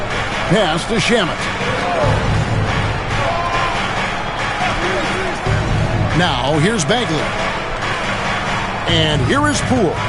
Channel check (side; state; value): both; identical; correlation 1.00